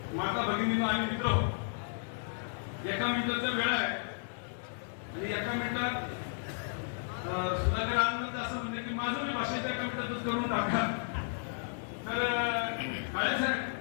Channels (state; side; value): silent; right; digital silence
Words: माता भगिनींनो आणि मित्र, एका मिनिटाचा वेळ आहे आणि एका मिनिटात सुधाकर आनंद असं म्हणते की माझं मी भाषेच्या एका मिनिटातच करून टाका. तर काळे साहेब,